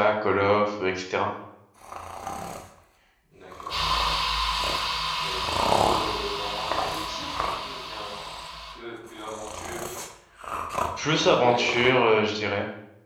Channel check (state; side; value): identical; both; correlation 1.00